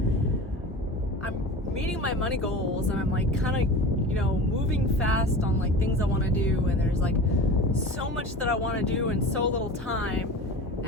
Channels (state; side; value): normal; both; correlation 0.34